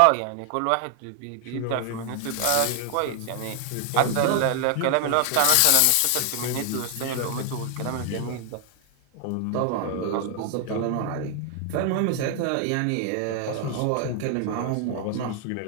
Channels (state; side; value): different; both; correlation 0.00